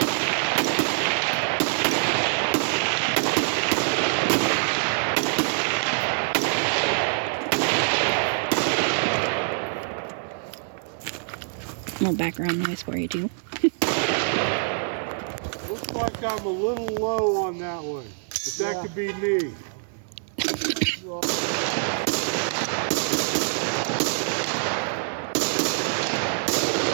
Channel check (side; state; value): left; silent; digital silence